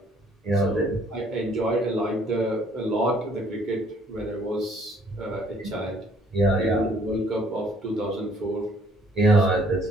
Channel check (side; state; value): both; normal; correlation 0.62